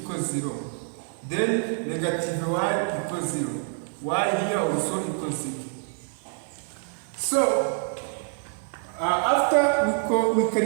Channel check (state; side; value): silent; left; 61 dB below the other